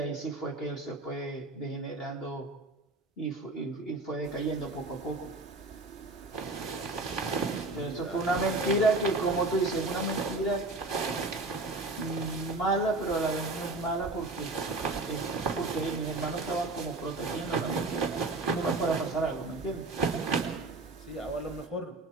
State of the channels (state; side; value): quieter; left; 3.0 dB